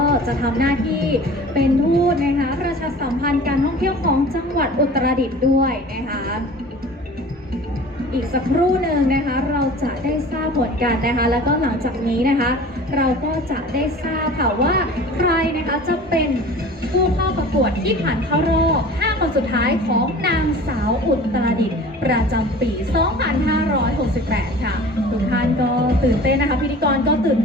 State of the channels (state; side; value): normal; both; correlation 0.42